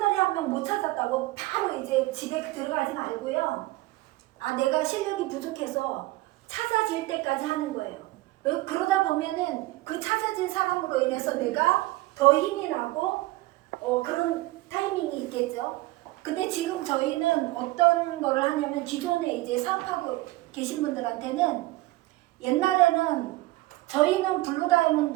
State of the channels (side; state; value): left; quieter; 19.3 dB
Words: 한 명 못 찾았다고 바로 이제 집에 들어가지 말고요. 내가 실력이 부족해서 찾아질 때까지 하는 거예요. 그러다 보면은 그 찾아진 사람으로 인해서 내가 더 힘이 나고 그런 타이밍이 있겠죠. 근데 지금 저희는 어떤 거를 하냐면 기존에 이제 사업하고 계신 분들한테는 옛날에는 저희는